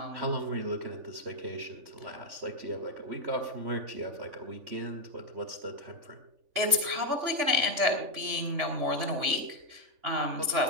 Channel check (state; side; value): late; left; 3.5 ms